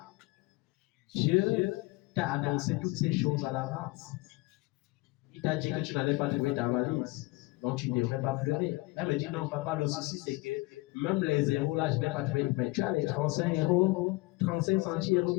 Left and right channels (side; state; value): right; quieter; 22.9 dB